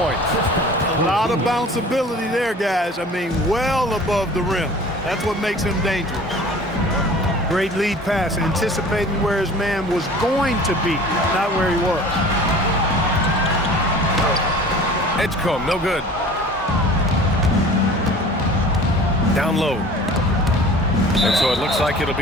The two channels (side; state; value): both; normal; correlation 0.44